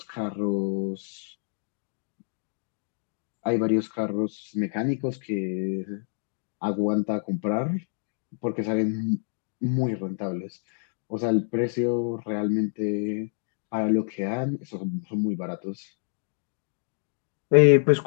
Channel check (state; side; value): silent; right; digital silence